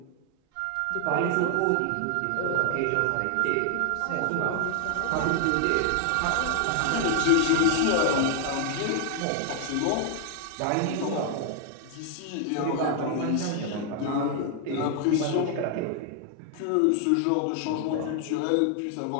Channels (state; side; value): different; both; correlation 0.00